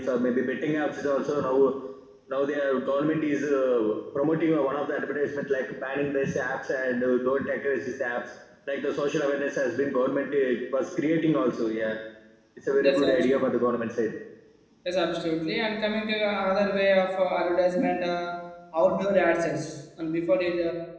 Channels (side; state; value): both; identical; correlation 1.00